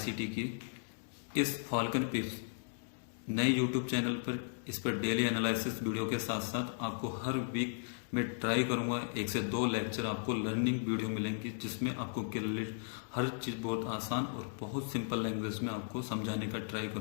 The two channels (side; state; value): right; silent; digital silence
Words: की इस फाल्कन पिप्स नए यूट्यूब चैनल पर इस पर डेली एनालिसिस वीडियो के साथ साथ आपको हर वीक में ट्राई करूंगा 1 से 2 लेक्चर आपको लर्निंग वीडियो मिलेंगी जिसमें आपको क्लियर हर चीज़ बहुत आसान और बहुत सिंपल लैंग्वेज में आपको समझाने का ट्राई